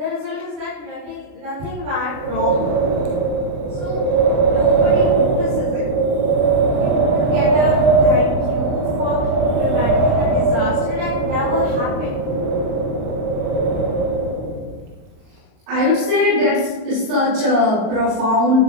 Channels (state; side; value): late; left; 38 ms